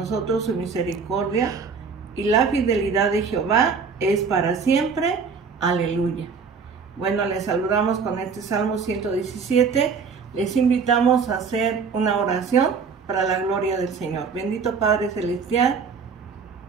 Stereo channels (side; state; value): left; quieter; 5.5 dB